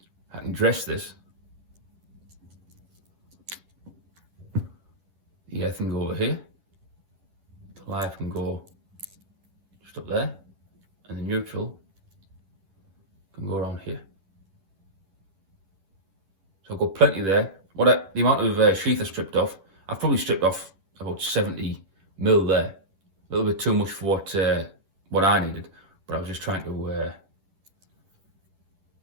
I can dress this. The earth can go over here, the live can go just up there, and the neutral can go around here. So I've got plenty there. The amount of sheath I stripped off, I've probably stripped off about 70 mil there. A little bit too much for what I needed, but I was just trying to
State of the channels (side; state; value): left; late; 11 ms